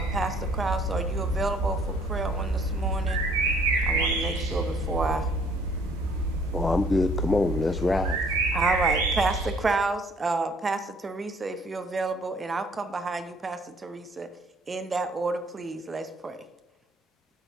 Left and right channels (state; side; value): normal; both; correlation 0.59